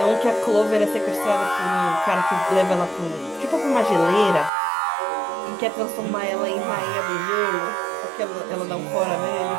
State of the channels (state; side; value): drops out; left; at 4.5 s